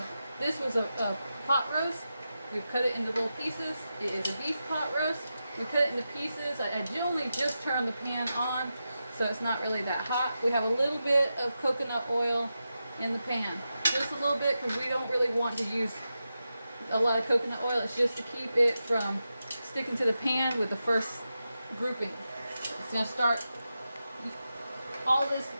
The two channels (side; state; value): both; inverted; correlation -0.90